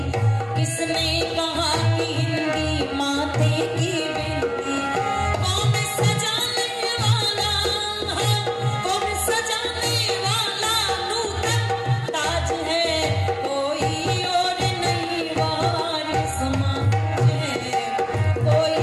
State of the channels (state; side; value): identical; both; correlation 1.00